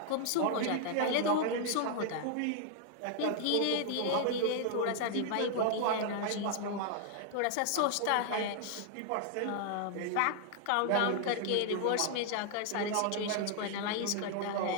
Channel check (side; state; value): both; different; correlation 0.00